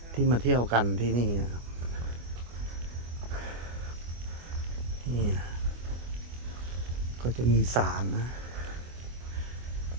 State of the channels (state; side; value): late; left; 24 ms